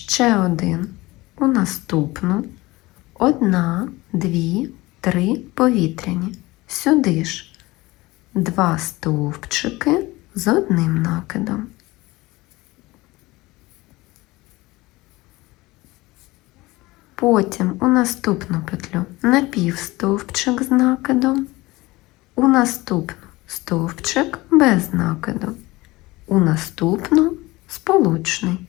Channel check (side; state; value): right; quieter; 20.6 dB